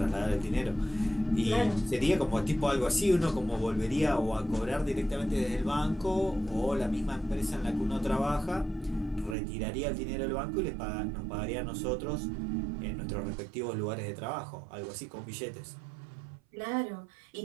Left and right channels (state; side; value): drops out; left; at 9.3 s